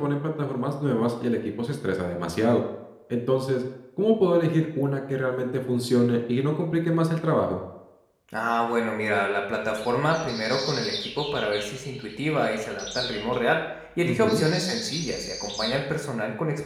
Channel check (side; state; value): both; identical; correlation 1.00